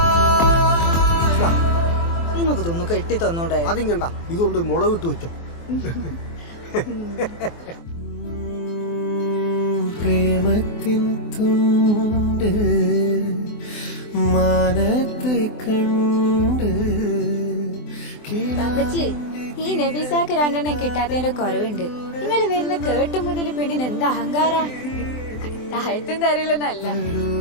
നിങ്ങൾക്ക് തോന്നു കെട്ടി തന്നോടെ. അതിങ്ങണ്ട, ഇതുകൊണ്ട് മുളകിട്ട് വെച്ചോ. പ്രേമത്തിൻ തുണ്ട് മാനത്ത് കണ്ട്. ഈ നബീസാക്ക് 2 എണ്ണം കിട്ടാത്തതിന്റെ കുറവുണ്ട്. നിങ്ങൾ വരുന്ന കേട്ടു മുതൽ പെണ്ണിന് എന്താ അഹങ്കാര. താഴത്തും തരില്ലെന്നല്ല.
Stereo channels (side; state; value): right; late; 24 ms